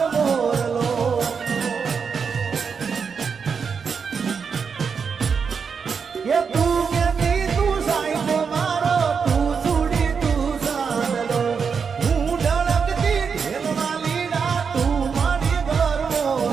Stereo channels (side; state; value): left; quieter; 6.0 dB